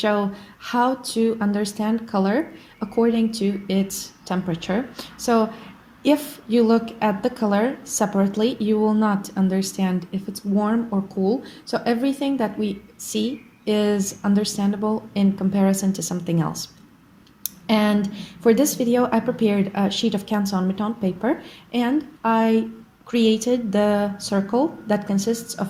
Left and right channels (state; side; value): identical; both; correlation 1.00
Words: how to understand color according to its temperature. So if you look at the color separately, you will not understand if it's warm or cool. So everything that we see is understandable in comparison to something else. And for this video, I prepared a sheet of Canson Mouton paper and I created the circle that consists